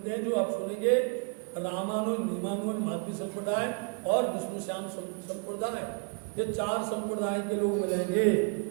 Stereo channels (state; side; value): quieter; left; 36.1 dB